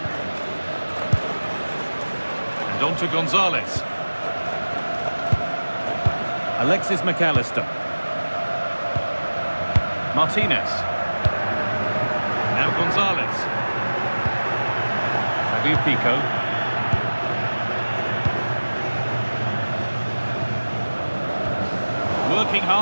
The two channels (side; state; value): both; inverted; correlation -1.00